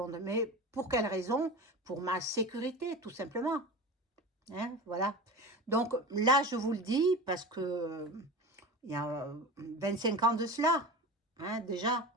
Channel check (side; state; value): both; normal; correlation 0.30